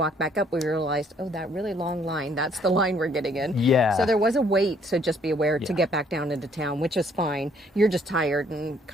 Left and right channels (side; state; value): both; normal; correlation 0.64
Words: back up, we realized, oh, that really long line, that's the line we're getting in. Yeah. So there was a wait, so just be aware to get back down into town, which is fine. You're just tired and